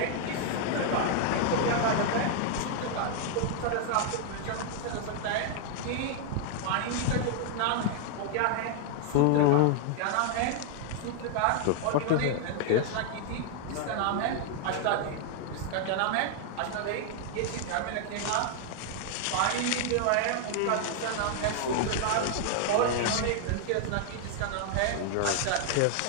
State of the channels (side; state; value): both; different; correlation 0.00